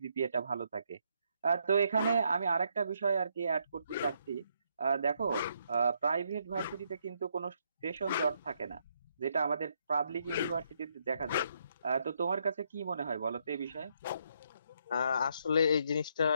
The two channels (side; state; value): both; inverted; correlation -0.75